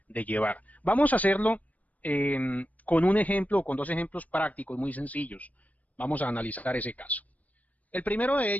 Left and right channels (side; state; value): right; late; 0.071 ms